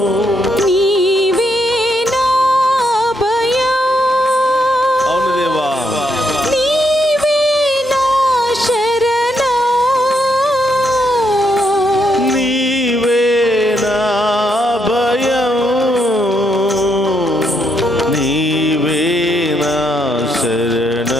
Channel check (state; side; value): normal; both; correlation 0.77